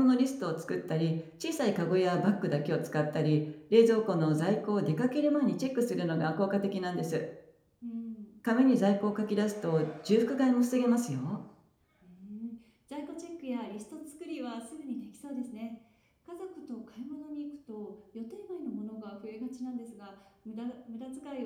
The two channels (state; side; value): identical; both; correlation 1.00